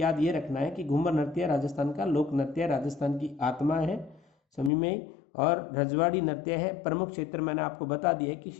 ये रखना है कि घूमर नृत्य राजस्थान का लोक नृत्य, राजस्थान की आत्मा है। समझ में? और रजवाड़ी नृत्य है। प्रमुख क्षेत्र मैंने आपको बता दिया है कि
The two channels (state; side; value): drops out; right; at 4.7 s